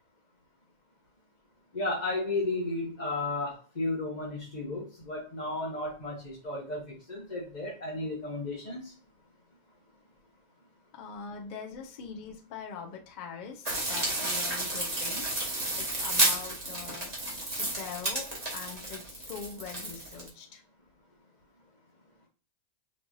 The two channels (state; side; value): late; right; 1.9 ms